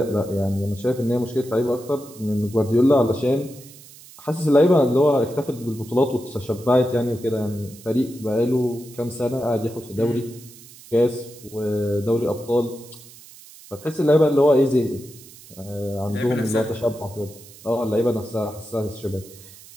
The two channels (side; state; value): right; noise; hiss, 20 dB below the sound